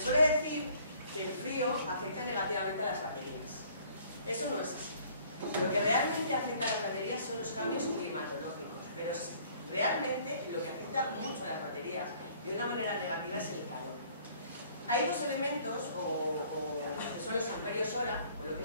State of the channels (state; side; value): inverted; both; correlation -0.57